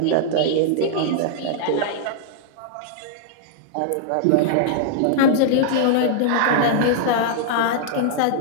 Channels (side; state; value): both; different; correlation -0.01